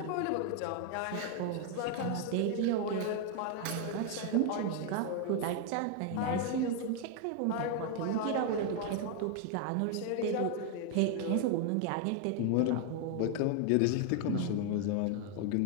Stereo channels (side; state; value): both; different; correlation 0.01